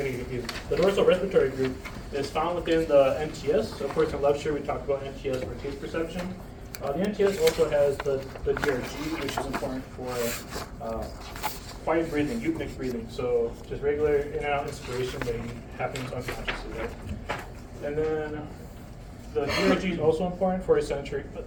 confused. The dorsal respiratory group is found within the NTS. So of course, in lecture we talked about NTS for taste perception. The NTS also has the DRG, which is important for quiet breathing, eupneic breathing. So just regular in and out inspiration that happens unconsciously, right? And then the DRG is also important for sensory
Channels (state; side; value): identical; both; correlation 1.00